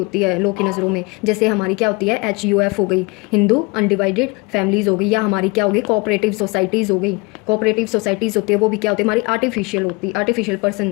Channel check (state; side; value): quieter; right; 27.0 dB